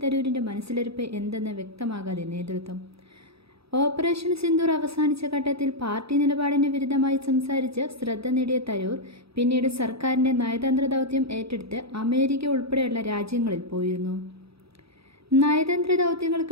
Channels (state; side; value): late; left; 0.77 ms